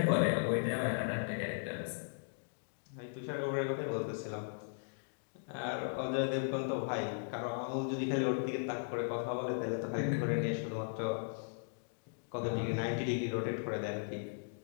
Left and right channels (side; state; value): right; silent; digital silence